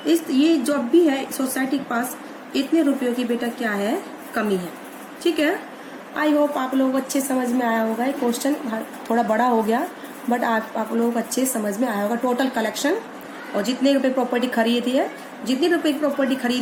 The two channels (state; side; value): identical; both; correlation 1.00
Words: ये जो भी है सोसाइटी के पास इतने रुपयों की बेटा क्या है? कमी है। ठीक है, आई होप आप लोगों को अच्छे समझ में आया होगा। ये क्वेश्चन थोड़ा बड़ा हो गया बट आप लोगों को अच्छे समझ में आया होगा। टोटल कलेक्शन और जितने रुपए प्रॉपर्टी खरीदी है, जितने रुपए की प्रॉपर्टी